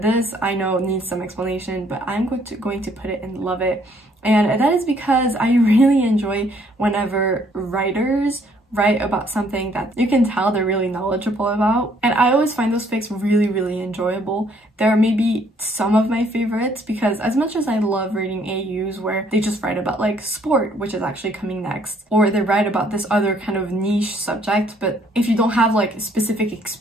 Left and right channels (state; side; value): normal; both; correlation 0.64